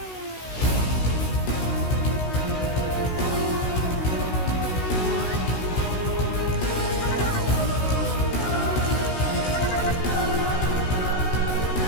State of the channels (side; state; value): right; late; 16 ms